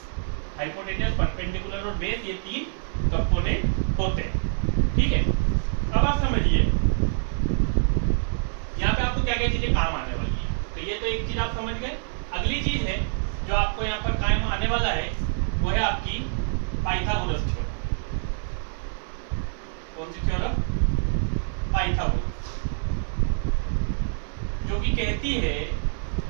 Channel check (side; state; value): left; silent; digital silence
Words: हाइपोटेनियस, परपेंडिकुलर और बेस, ये तीन कंपोनेंट होते हैं। ठीक है, अब आप समझिए यहाँ पे आपको क्या क्या चीजें काम आने वाली है। तो ये तो एक चीज आप समझ गए। अगली चीज है जो आपको यहाँ पर काम आने वाला है वो है आपकी पाइथागोरस थ्योरम। कौन सी थ्योरम? पाइथागोरस, जो कि कहती है